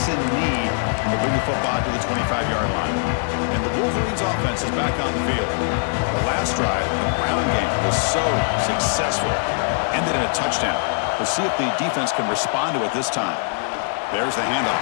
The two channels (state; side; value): silent; right; digital silence